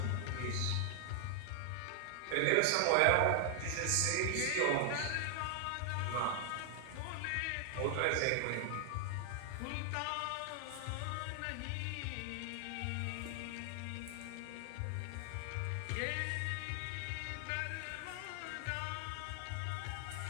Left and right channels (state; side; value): different; both; correlation 0.00